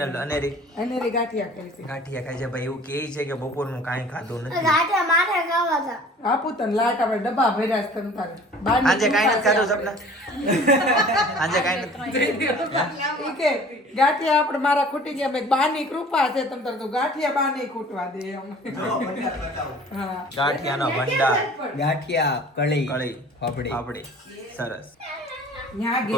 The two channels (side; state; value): both; normal; correlation 0.47